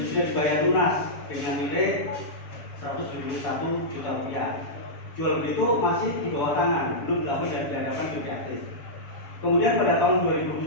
sudah dibayar lunas dengan nilai 171 juta rupiah. Jual beli itu masih di bawah tangan, belum dilakukan di hadapan juri aktif. Kemudian pada tahun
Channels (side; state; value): right; late; 6.9 ms